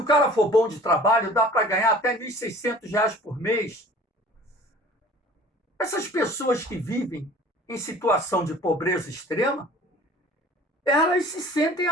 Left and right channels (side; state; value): both; normal; correlation 0.47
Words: cara for bom de trabalho, dá para ganhar até R$ 1.600 por mês. Essas pessoas que vivem em situação de pobreza extrema, elas se sentem